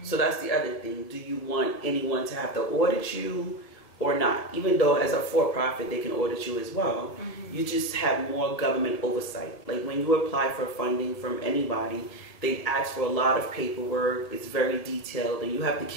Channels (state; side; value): late; right; 1.7 ms